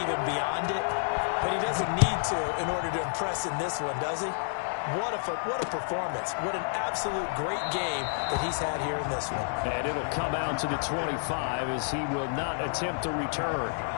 beyond it, but he doesn't need to in order to impress in this one, does he? What a performance. What an absolute great game that he's had here in this one. And it'll come out to the 25 as he will not attempt to return.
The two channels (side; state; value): right; silent; digital silence